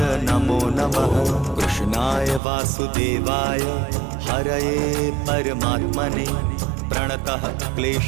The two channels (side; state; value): left; drops out; at 2.4 s